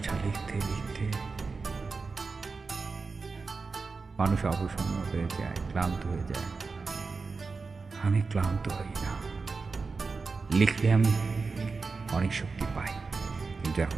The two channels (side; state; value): left; quieter; 4.4 dB